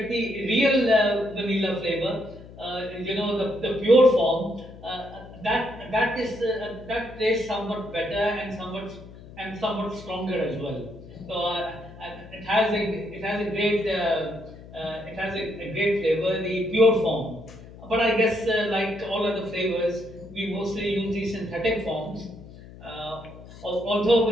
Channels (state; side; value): noise; left; hum, 17 dB below the sound